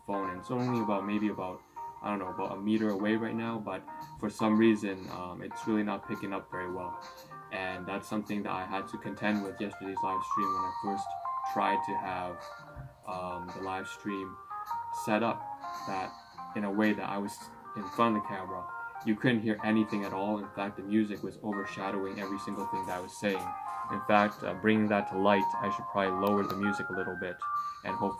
phone, and it's only about about a meter away right now, but for some reason it's really not picking up very well, and that's something that I had to contend with yesterday's live stream when I first tried to have the live stream set up that in a way that I was in front of the camera. You couldn't hear anything at all. In fact, the music was overshadowing every single thing that I was saying. In fact, bringing that to light, I should probably lower the music a little bit, and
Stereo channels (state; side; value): identical; both; correlation 1.00